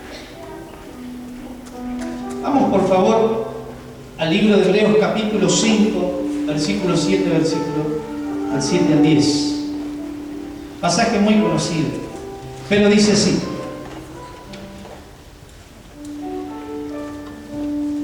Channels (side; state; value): both; identical; correlation 1.00